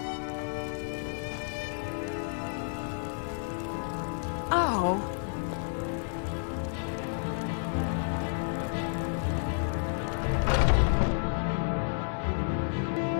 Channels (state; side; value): silent; right; digital silence